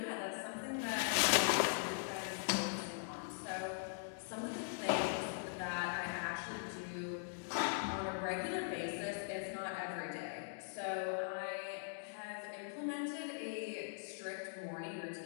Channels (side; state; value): right; silent; digital silence